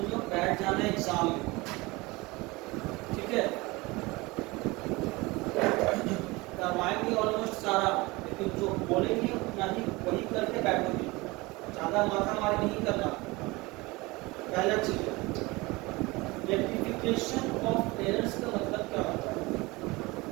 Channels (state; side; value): quieter; left; 22.9 dB